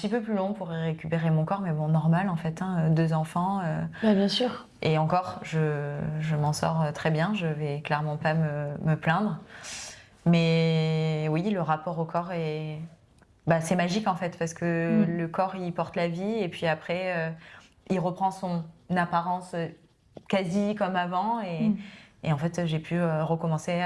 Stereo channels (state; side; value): identical; both; correlation 1.00